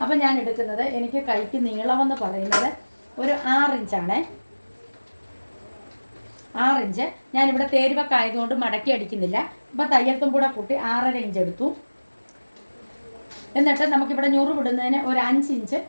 അപ്പം ഞാൻ എടുക്കുന്നത്, എനിക്ക് കൈക്ക് നീളമെന്ന് പറയുന്നത് ഒരു 6 ഇഞ്ചാണേ. 6 ഇഞ്ച് ഞാനിവിടെ തേരുവൊക്കെ ആയതുകൊണ്ട് മടക്കി അടിക്കുന്നില്ല. അപ്പോൾ തയ്യൽത്തും കൂടെ കൂട്ടി 6.5 ഇഞ്ച് എടുത്തു. എന്നിട്ട് നമുക്കിവിടെ ഞുറു വിടുന്നതിന് ഒരു 5 ഇഞ്ച്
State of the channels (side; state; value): both; inverted; correlation -1.00